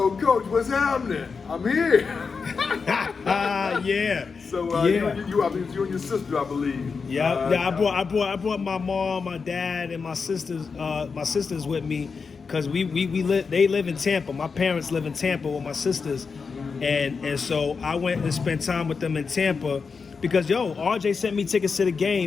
Coach, what's happening? I'm here. Yeah. So you and your sister, I believe. Yeah. I brought my mom, my dad, and my sisters. My sisters with me, cause they live in Tampa. My parents live in Tampa with my sisters, and so I went and spent time with them in Tampa, because RJ sent me tickets to the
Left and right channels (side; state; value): right; quieter; 5.2 dB